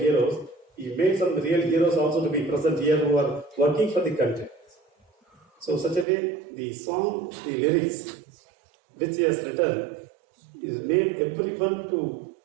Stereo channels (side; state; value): left; drops out; at 6.1 s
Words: he made some real heroes also to be present here who are working for the country. So such a way, the song, the lyrics which he has written, is made everyone to